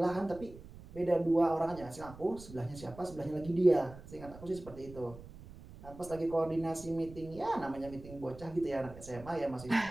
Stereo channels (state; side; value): noise; right; rumble, 17 dB below the sound